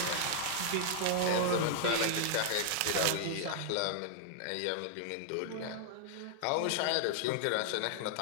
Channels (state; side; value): different; both; correlation 0.00